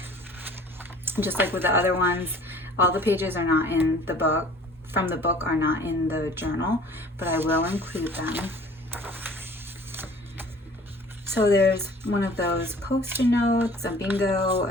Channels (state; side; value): normal; both; correlation 0.49